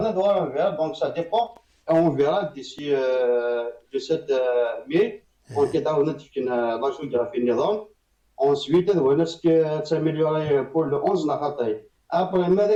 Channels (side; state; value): both; identical; correlation 1.00